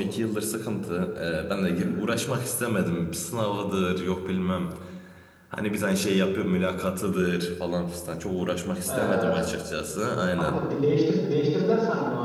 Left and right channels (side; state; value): both; identical; correlation 1.00